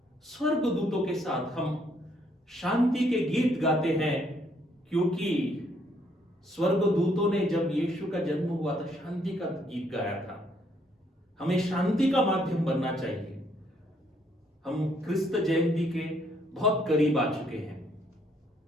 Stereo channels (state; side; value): normal; both; correlation 0.69